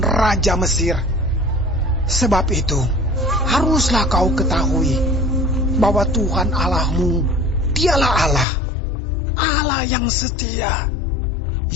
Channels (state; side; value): drops out; right; at 8.5 s